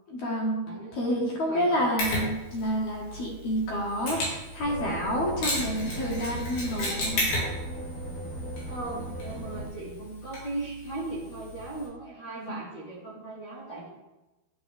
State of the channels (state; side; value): late; right; 12 ms